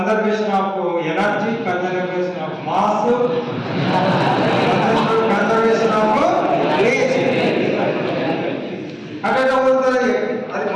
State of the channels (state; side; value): identical; both; correlation 1.00